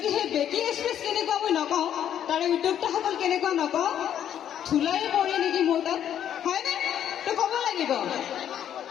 সেই বেকি এক্সপ্ৰেছ কেনেকুৱা মই নকওঁ তাৰে উদ্যোক্তাসকল কেনেকুৱা নকওঁ ধূলাই পৰে নেকি মোৰ তাত হয়নে তো ক'ব লাগিব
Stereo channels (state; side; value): quieter; right; 10.0 dB